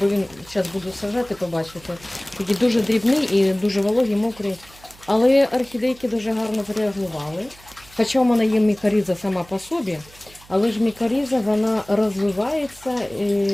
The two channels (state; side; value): noise; right; hum, 24 dB below the sound